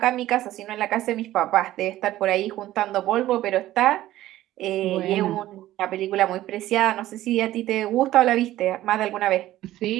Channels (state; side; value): quieter; left; 14.7 dB